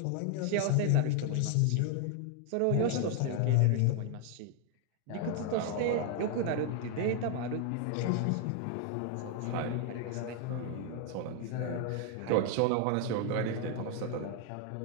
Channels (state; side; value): different; both; correlation 0.00